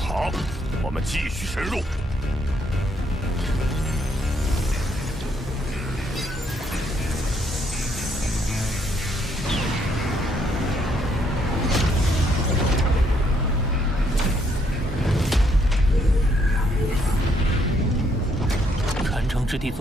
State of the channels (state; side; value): normal; both; correlation 0.71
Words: 我们继续深入。之地